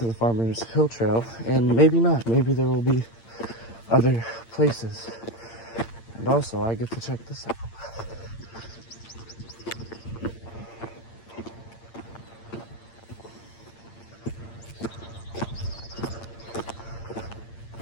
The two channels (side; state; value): right; late; 8.8 ms